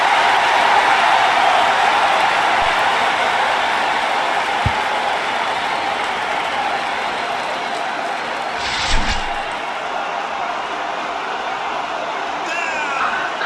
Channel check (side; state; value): both; identical; correlation 1.00